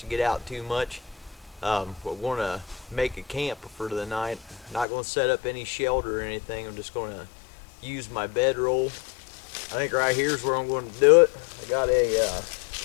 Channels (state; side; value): drops out; right; at 4.9 s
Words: get out too much. We're going to make a camp for the night. Not going to set up any shelter or anything. I'm just going to use my bedroll. I think right here is where I'm going to do it. I got a